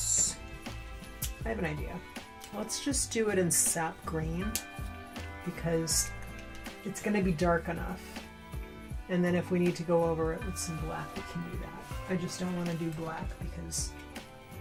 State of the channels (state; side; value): identical; both; correlation 1.00